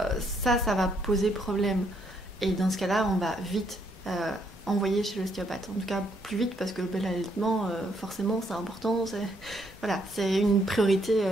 Ça va poser problème. Et dans ce cas-là, on va vite envoyer chez l'ostéopathe. En tout cas, plus vite parce que l'allaitement, forcément, c'est important. C'est une priorité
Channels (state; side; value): normal; both; correlation 0.72